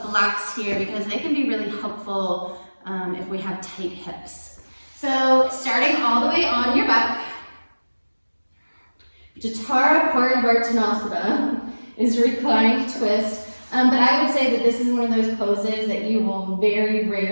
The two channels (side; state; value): both; inverted; correlation -1.00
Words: blocks here because they can be really helpful if we have tight hips. So starting all the way on your back, Jathara Parivartanasana is reclining twist. But I would say that this is one of those poses that you will very